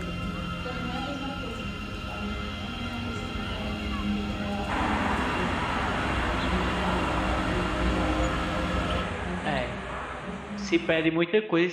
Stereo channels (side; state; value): both; identical; correlation 1.00